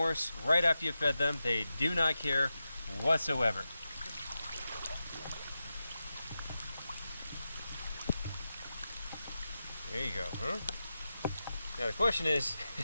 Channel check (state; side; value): inverted; both; correlation -0.91